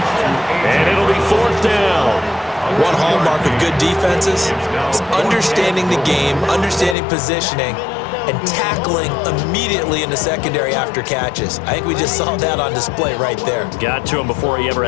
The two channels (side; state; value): right; drops out; at 7.0 s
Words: And it'll be 4th down. One hallmark of good defenses is understanding the game, understanding positioning, and tackling immediately in the secondary after catches. I think we just saw that on display right there. Got to him before he ever